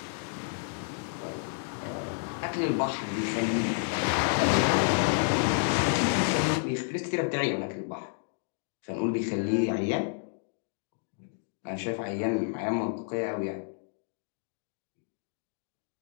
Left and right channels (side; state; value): right; silent; digital silence